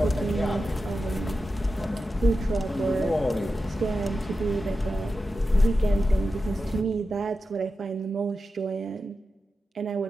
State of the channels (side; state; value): both; normal; correlation 0.91